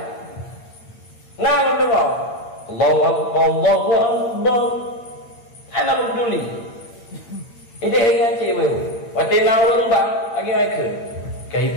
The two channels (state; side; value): late; right; 8.9 ms